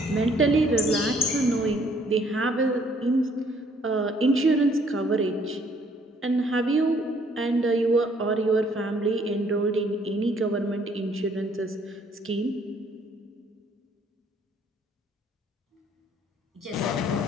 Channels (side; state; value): both; normal; correlation 0.63